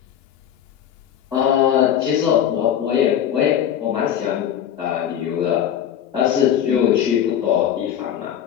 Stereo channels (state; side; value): quieter; right; 9.8 dB